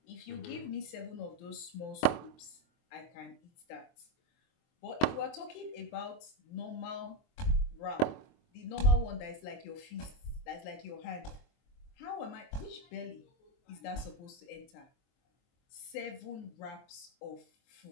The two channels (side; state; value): right; late; 23 ms